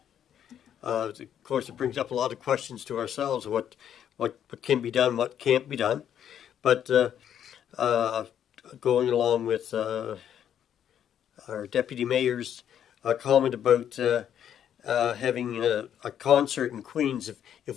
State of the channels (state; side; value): quieter; right; 9.6 dB